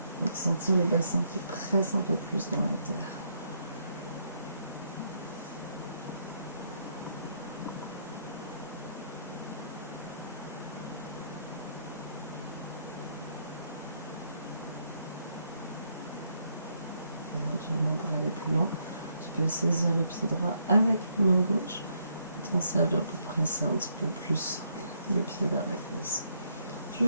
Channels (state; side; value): inverted; both; correlation -0.74